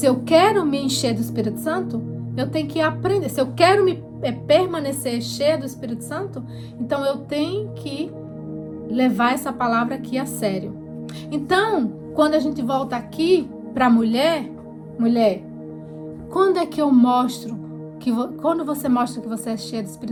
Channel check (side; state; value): both; identical; correlation 1.00